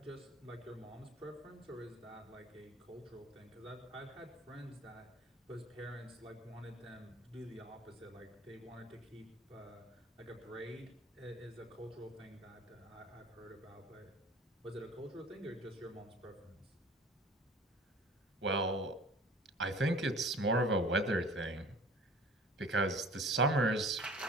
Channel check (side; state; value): both; normal; correlation 0.45